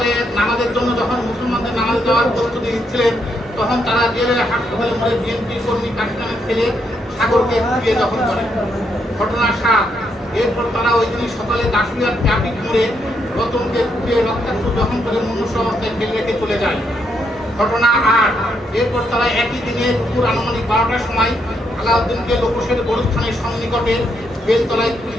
নামাজের জন্য যখন মুসলমানদের নামাজ দেওয়ার প্রস্তুতি নিচ্ছিলেন তখন তারা জেলের হাসপাতালে মোড়ে বিএনপি কর্মী কাশিমের ছেলে সাগরকে কুপিয়ে দখল করে। ঘটনা 7, এরপর তারা ওই দিন সকালে দাসুরিয়ার ট্রাফিক মোড়ে রতনকে কুপিয়ে রক্তাক্ত দহন করে মনুষ্য অবস্থায় ফেলে রেখে চলে যায়। ঘটনা 8, এরপর তারা একই দিনে দুপুর আনুমানিক 12টার সময় আলাউদ্দিনকে লোকসের গরুস্থানের সন্নিকটে বেলতলায়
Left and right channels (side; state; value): both; normal; correlation 0.77